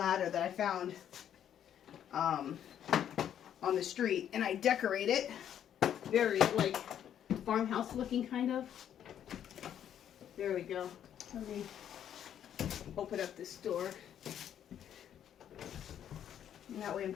that I found on the street, and I decorate it very like farmhouse looking kind of. There we go. Let me open up this door. And that way I'm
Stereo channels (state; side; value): quieter; right; 9.8 dB